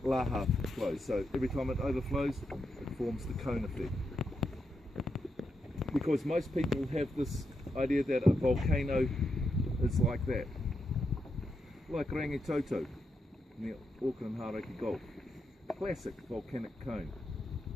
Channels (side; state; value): both; normal; correlation 0.84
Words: laha flows, so every time it overflows, it forms the cone effect. Because most people have this idea that a volcano is like that, like Rangitoto near Auckland Hauraki Gulf, classic volcanic cone.